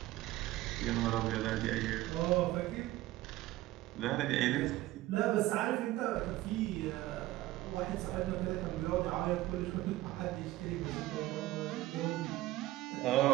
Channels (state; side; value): quieter; left; 16.8 dB